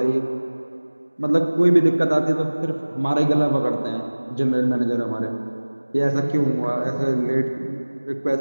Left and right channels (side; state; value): both; inverted; correlation -1.00